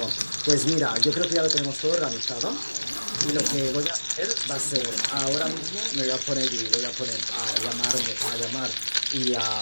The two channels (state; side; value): inverted; both; correlation -1.00